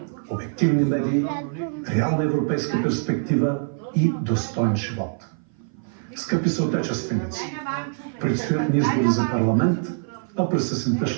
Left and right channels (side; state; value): left; silent; 57 dB below the other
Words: обективни медии, реална европейска перспектива и достоен живот. Скъпи съотечественици, предстоят ни избори за парламент, а през есента